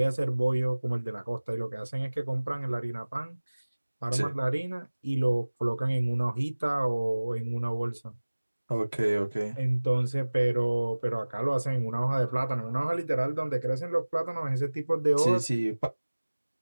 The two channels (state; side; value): inverted; both; correlation -1.00